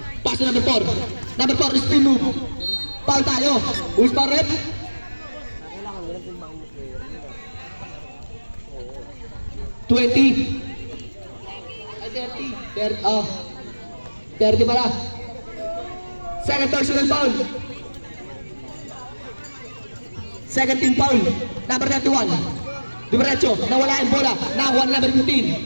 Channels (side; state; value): both; inverted; correlation -1.00